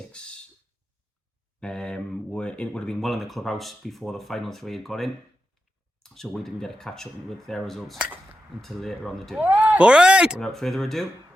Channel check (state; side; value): normal; both; correlation 0.89